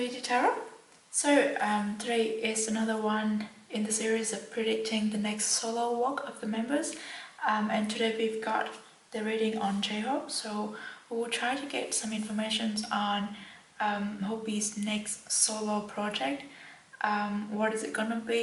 Tarot. So today is another one in the series of predicting the next solo walk of the members, and today we've got the reading on J-Hope. So we will try to get some information on Hope's next solo project. What is it gonna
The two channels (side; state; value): both; identical; correlation 1.00